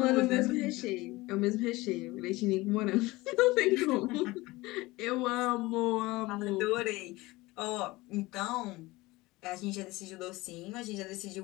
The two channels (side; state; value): right; quieter; 20.7 dB